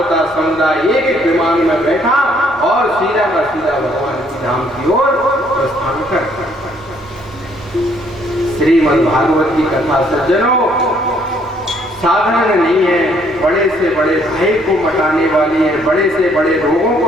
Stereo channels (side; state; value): both; normal; correlation 0.66